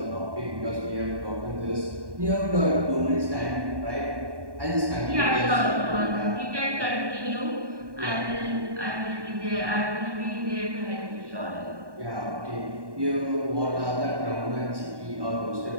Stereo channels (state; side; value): late; left; 1.1 ms